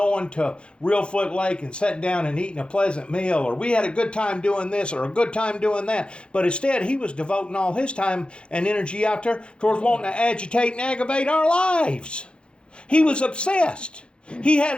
to Reelfoot Lake and sitting down and eating a pleasant meal, or we had a good time doing this or a good time doing that. But instead, he was devoting all his time and energy out there towards wanting to agitate and aggravate our lives. He was obsessed. He had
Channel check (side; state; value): right; late; 0.055 ms